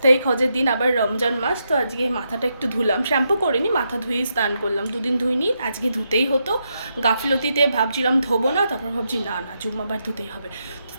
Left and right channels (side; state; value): both; inverted; correlation -0.82